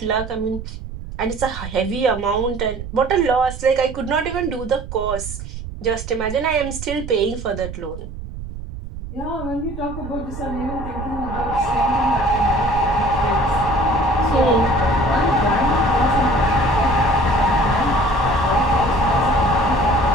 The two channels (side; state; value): right; noise; rumble, 10 dB below the sound